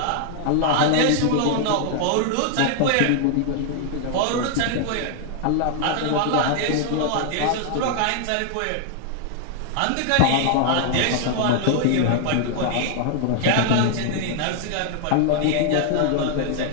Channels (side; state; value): both; different; correlation 0.00